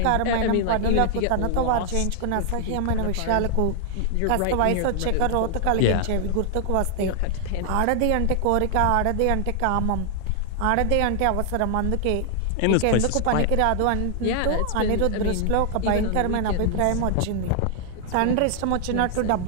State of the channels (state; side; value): different; both; correlation 0.00